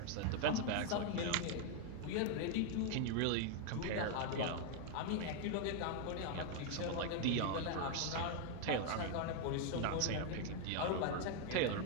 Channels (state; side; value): different; both; correlation 0.01